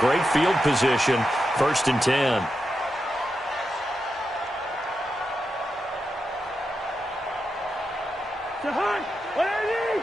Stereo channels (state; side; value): normal; both; correlation 0.87